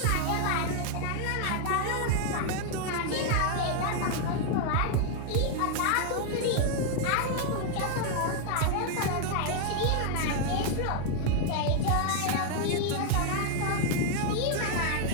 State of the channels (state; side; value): different; both; correlation 0.00